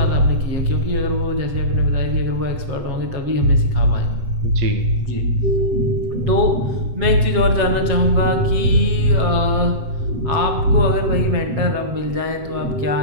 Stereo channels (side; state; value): left; late; 7.9 ms